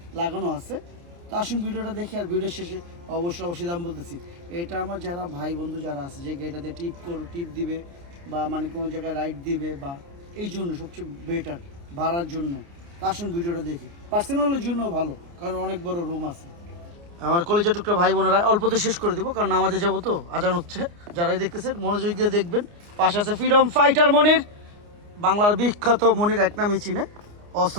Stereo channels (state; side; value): late; left; 29 ms